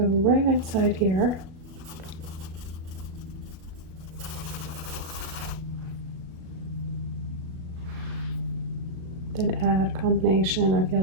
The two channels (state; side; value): late; left; 37 ms